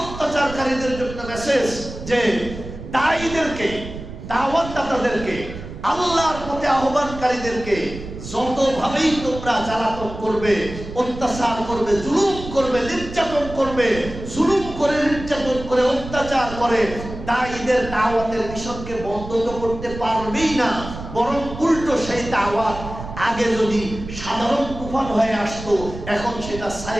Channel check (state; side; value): noise; right; rumble, 11 dB below the sound